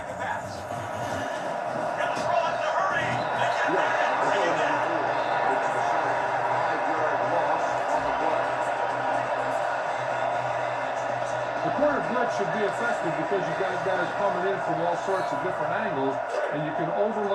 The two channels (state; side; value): identical; both; correlation 1.00